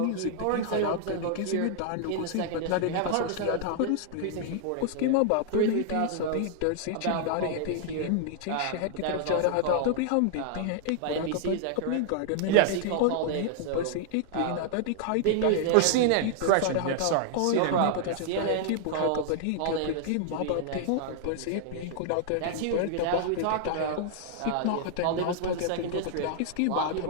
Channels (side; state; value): both; different; correlation -0.01